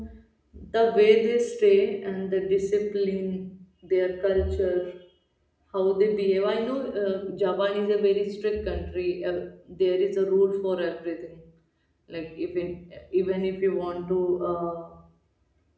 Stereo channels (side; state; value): both; identical; correlation 1.00